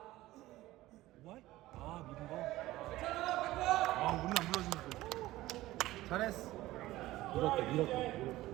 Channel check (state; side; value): quieter; left; 16.8 dB